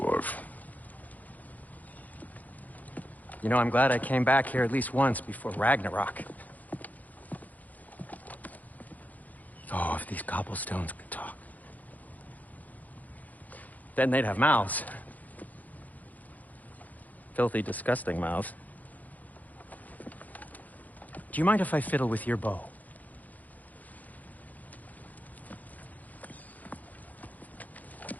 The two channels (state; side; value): late; right; 0.080 ms